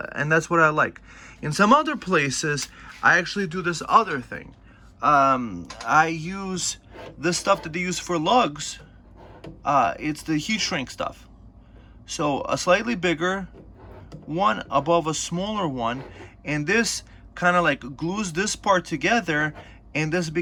that's what I like. In some other places, I actually do this other thing. I use this stuff that they use for lugs. It's the heat shrink stuff. So a slightly bigger one above a smaller one, and this kind of like glues this part together, and this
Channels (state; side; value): identical; both; correlation 1.00